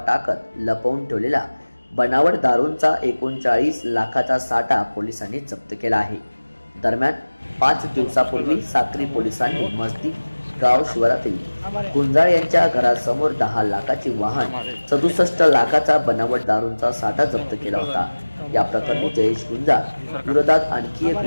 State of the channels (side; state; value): both; inverted; correlation -1.00